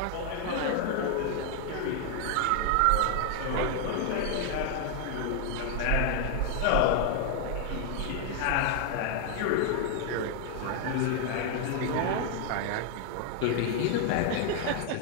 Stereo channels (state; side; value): different; both; correlation 0.00